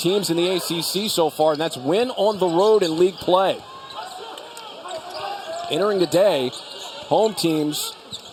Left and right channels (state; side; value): identical; both; correlation 1.00